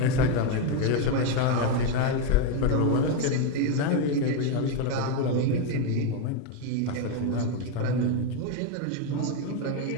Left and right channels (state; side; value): different; both; correlation 0.02